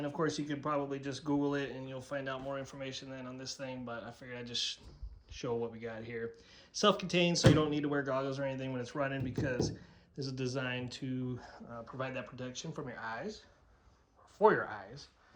of course you could probably just Google it and you'll find out more information than on this thing, but I figured I'd just show what we got here. Self-contained, so you don't need to wear goggles or anything when it's running, because this is designed to provide that protection from your eyes, for your eyes,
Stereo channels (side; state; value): both; identical; correlation 1.00